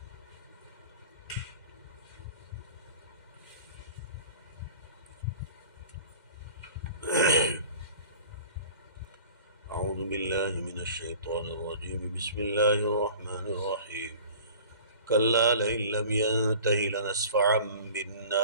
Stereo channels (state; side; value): inverted; both; correlation -0.44